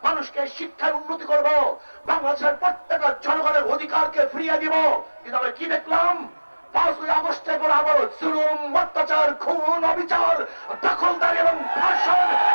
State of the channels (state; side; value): inverted; both; correlation -1.00